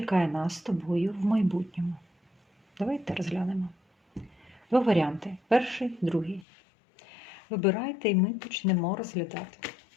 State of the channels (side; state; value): right; drops out; at 6.5 s